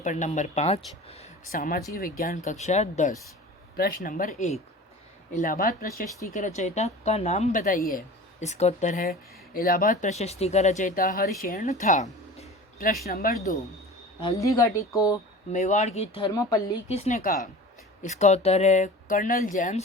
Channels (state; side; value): normal; both; correlation 0.37